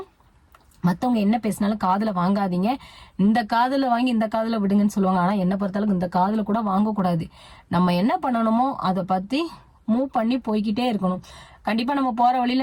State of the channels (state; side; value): identical; both; correlation 1.00